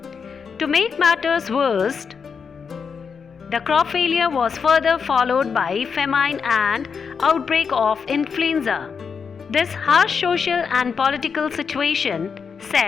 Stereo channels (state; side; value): quieter; right; 6.0 dB